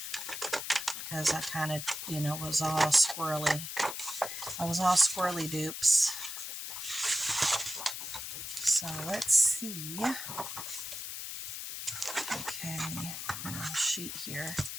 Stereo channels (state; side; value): noise; left; hiss, 6 dB below the sound